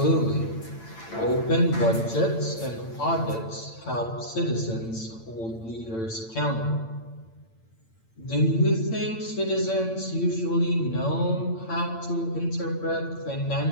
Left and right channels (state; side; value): late; right; 8.9 ms